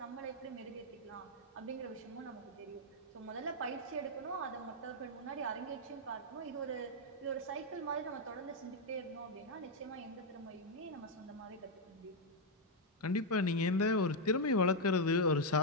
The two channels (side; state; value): both; normal; correlation 0.00